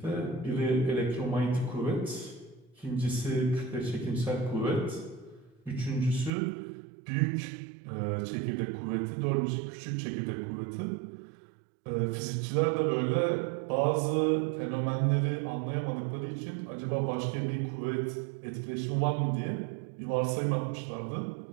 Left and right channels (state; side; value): drops out; left; at 6.3 s